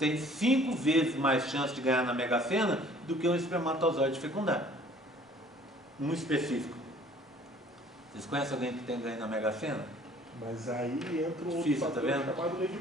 5 vezes mais chance de ganhar na Mega Sena do que um espermatozoide fecundar. Um específico. Vocês conhecem alguém que tem ganho na Mega Sena? Mas aí entra um difícil, outro fator chamado Lei de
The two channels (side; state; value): both; normal; correlation 0.54